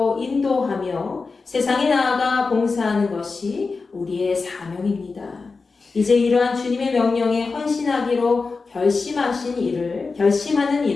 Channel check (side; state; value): right; quieter; 4.3 dB